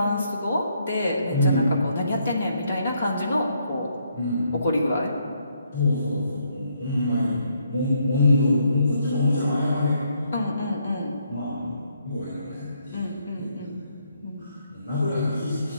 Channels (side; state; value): both; inverted; correlation -0.73